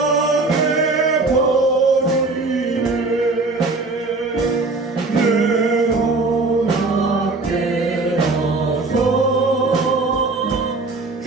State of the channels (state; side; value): quieter; left; 3.5 dB